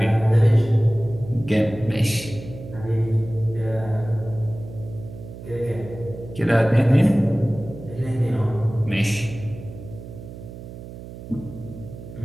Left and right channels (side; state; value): right; noise; hum, 13 dB below the sound